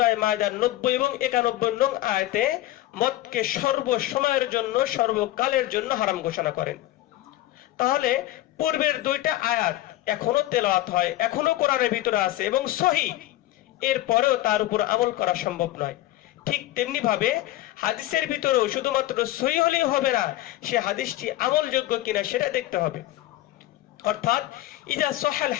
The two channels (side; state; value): right; quieter; 15.5 dB